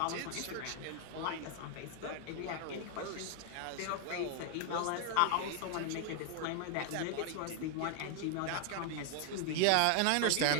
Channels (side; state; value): both; different; correlation 0.00